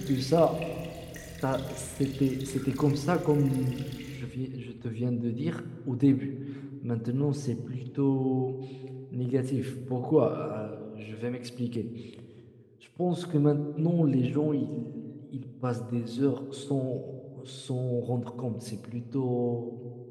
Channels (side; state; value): both; identical; correlation 1.00